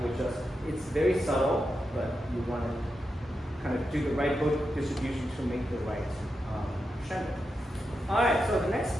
would just, it's very subtle, but you want to kind of do the right book distribution to make the right crescendo. All right, so the next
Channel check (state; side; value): normal; both; correlation 0.87